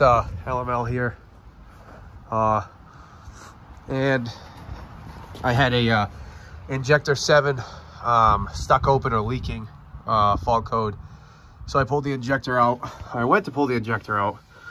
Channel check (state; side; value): identical; both; correlation 1.00